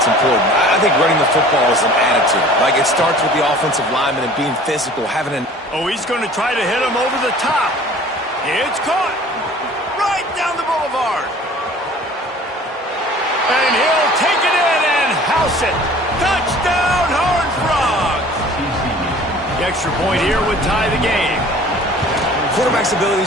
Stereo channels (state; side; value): normal; both; correlation 0.47